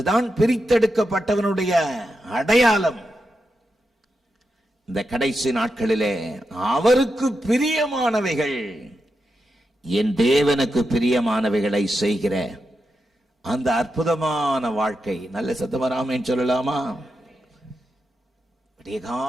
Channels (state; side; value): normal; both; correlation 0.87